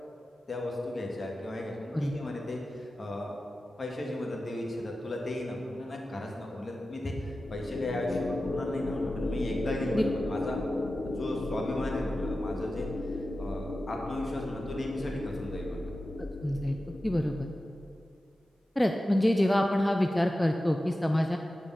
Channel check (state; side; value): normal; both; correlation 0.94